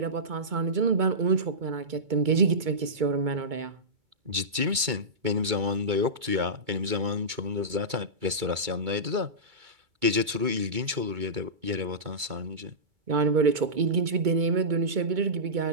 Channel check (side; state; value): left; late; 2.2 ms